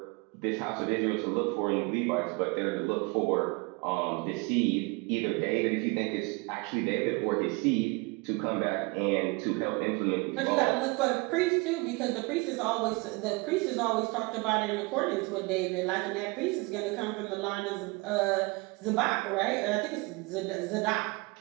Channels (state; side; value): quieter; left; 27.1 dB